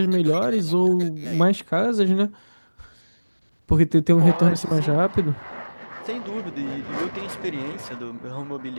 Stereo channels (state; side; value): inverted; both; correlation -1.00